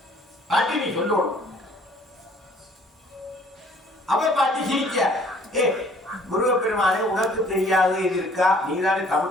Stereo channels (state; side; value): normal; both; correlation 0.57